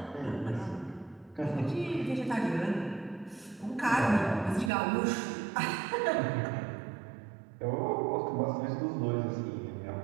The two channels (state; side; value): drops out; left; at 4.7 s